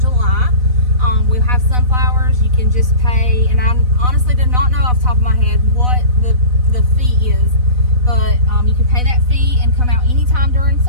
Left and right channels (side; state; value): left; late; 4.0 ms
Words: July. We'll have sunflowers. You can just pay, and I honestly did not know off the top of my head what the fee is, but you can pay that fee and come out anytime during